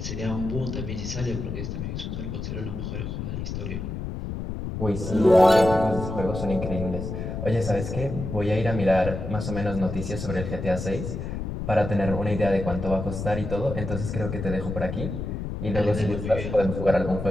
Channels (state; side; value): noise; left; rumble, 5 dB below the sound